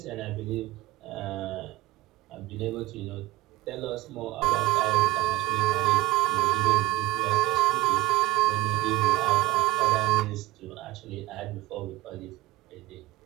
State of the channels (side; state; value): left; quieter; 18.2 dB